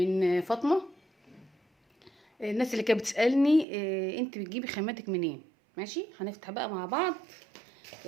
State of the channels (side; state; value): left; drops out; at 3.7 s